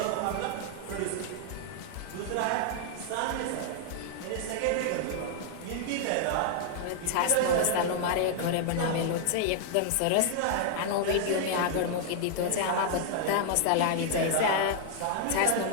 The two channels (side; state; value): both; different; correlation -0.01